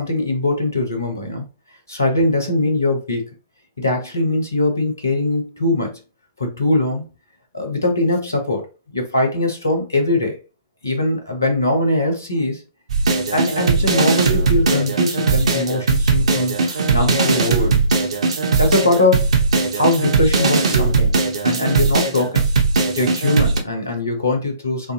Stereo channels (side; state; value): both; inverted; correlation -0.58